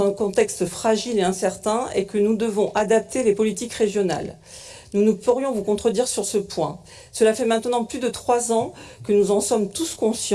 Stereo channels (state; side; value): identical; both; correlation 1.00